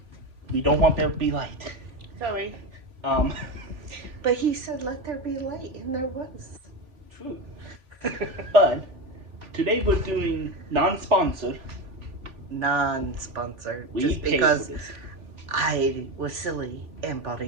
we don't want there to be light. Sorry. Um, But he said, let there be light, and there was. true. But today we're doing non-sponsored. Non-sponsored. We Just paid for because this. I was silly and bought a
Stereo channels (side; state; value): left; late; 3.4 ms